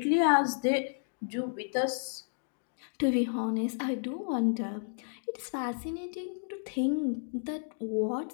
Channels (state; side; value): silent; right; digital silence